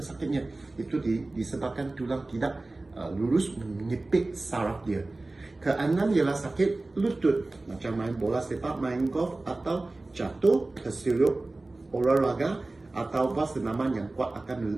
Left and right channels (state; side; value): quieter; left; 3.1 dB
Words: sakitnya? Itu disebabkan tulang tidak lurus menyepit saraf dia. Keenam ialah sakit lutut, macam main bola sepak, main golf atau jatuh, tersilup olahraga atau senaman yang kuat